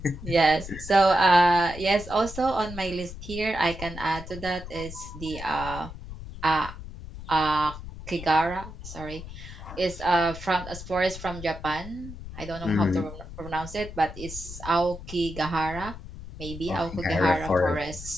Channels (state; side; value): noise; left; rumble, 12 dB below the sound